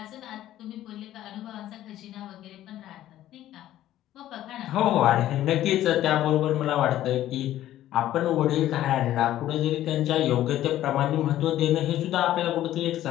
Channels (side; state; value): right; quieter; 13.3 dB